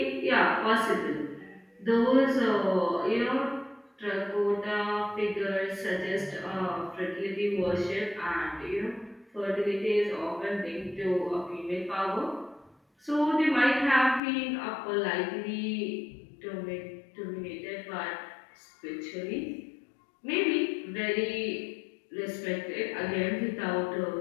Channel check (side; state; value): right; drops out; at 14.2 s